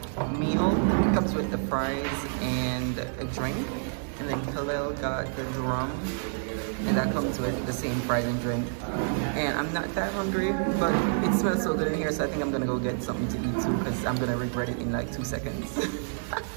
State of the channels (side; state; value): left; silent; digital silence